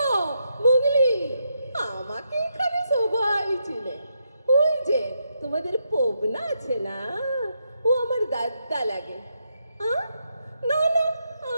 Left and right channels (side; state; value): both; inverted; correlation -0.81